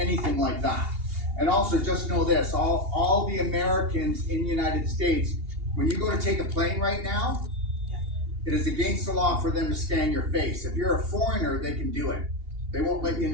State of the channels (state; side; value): late; left; 2.8 ms